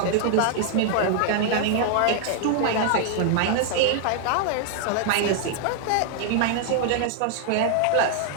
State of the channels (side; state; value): both; different; correlation 0.00